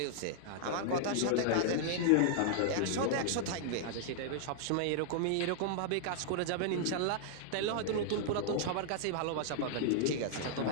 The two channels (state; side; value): different; both; correlation -0.01